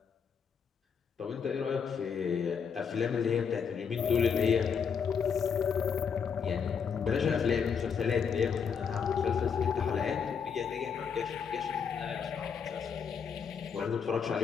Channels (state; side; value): quieter; right; 6.6 dB